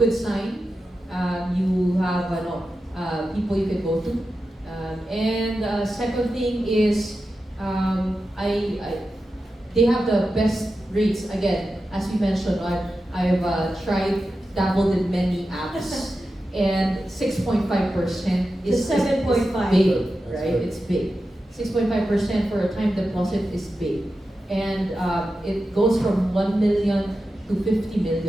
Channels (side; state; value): both; normal; correlation 0.91